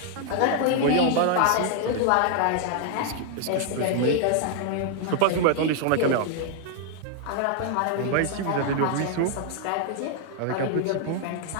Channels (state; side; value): different; both; correlation 0.00